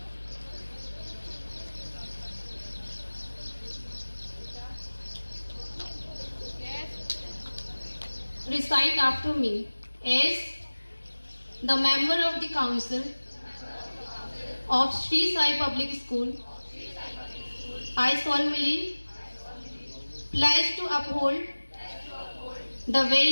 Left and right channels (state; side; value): inverted; both; correlation -1.00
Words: Recite after me. As the member of the council of Sri Sai Public School, I solemnly pledge to uphold the